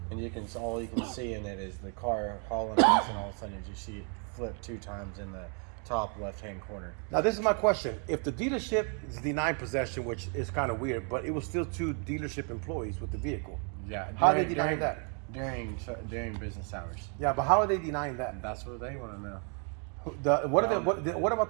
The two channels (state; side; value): quieter; left; 39.6 dB